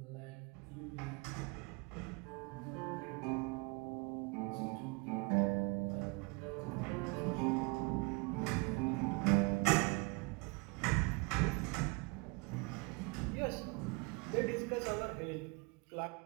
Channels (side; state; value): left; quieter; 29.1 dB